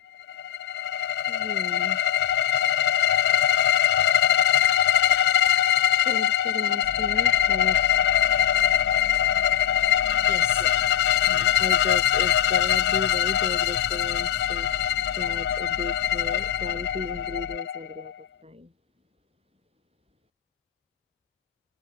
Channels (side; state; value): right; quieter; 10.3 dB